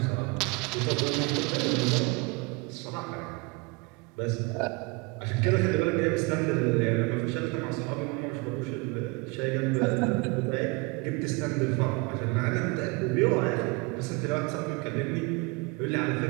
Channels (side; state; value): left; quieter; 28.3 dB